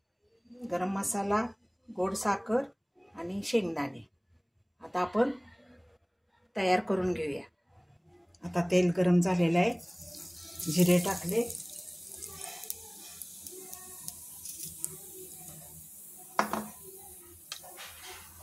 गरम मसाला, गोड साखर आणि शेंगदाणे। आता आपण तयार करून घेऊया। आता तेल गरम झालेलं आहे, जिरे टाकले,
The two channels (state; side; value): identical; both; correlation 1.00